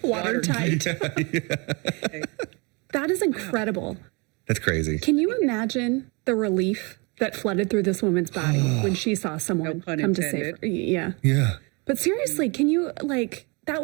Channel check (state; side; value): quieter; left; 29.6 dB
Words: Watertight. Okay. That is incredible. That's crazy. Can you imagine the relief that flooded through this woman's body when she saw someone No pun come to save her? intended. Yeah. Yeah. But seriously, can you, that